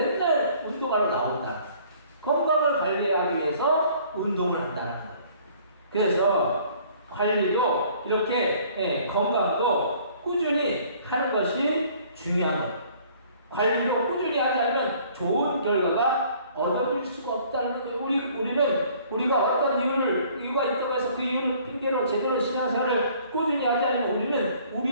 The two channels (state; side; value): inverted; both; correlation -0.56